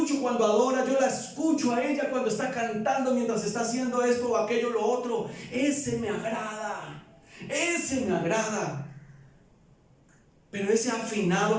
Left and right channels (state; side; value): identical; both; correlation 1.00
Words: cuando adora, yo la escucho a ella cuando está cantando mientras está haciendo esto o aquello, lo otro. Ese me agrada, ese me agrada. Pero ese afinado